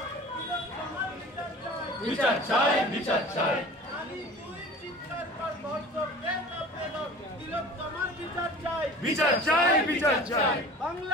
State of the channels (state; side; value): normal; both; correlation 0.41